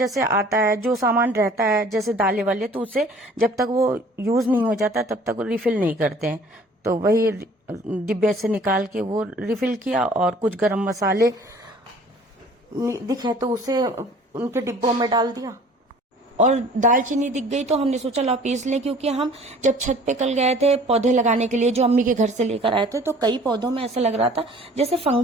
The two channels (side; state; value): both; normal; correlation 0.51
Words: आता है, जो सामान रहता है जैसे दालें वाले, तो उसे जब तक वो यूज नहीं हो जाता तब तक वो रिफिल नहीं करते हैं, तो वही डिब्बे से निकाल के वो रिफिल किया। और कुछ गरम मसाले दिखे तो उसे उनके डिब्बों में डाल दिया, और दालचीनी दिख गई तो हमने सोचा ला पीस लें, क्योंकि हम जब छत पे कल गए थे पौधे लगाने के लिए, जो अम्मी के घर से लेकर आए थे, तो कई पौधों में ऐसा लग रहा था जैसे